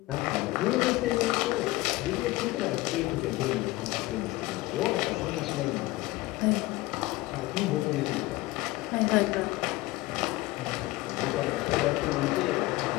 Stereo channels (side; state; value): right; quieter; 19.5 dB